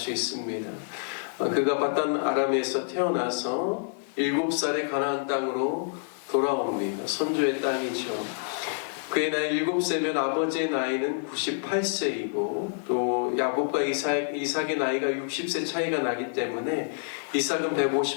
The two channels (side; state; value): right; silent; digital silence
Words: 있습니다. 그가 바단 아람에서 태어나서 7살에 가나안 땅으로 돌아옵니다. 선조의 땅이죠. 그의 나이 7세면 아버지의 나이는 98세이고 또 야곱과 이삭의 나이가 60세 차이가 나기 때문에 이삭은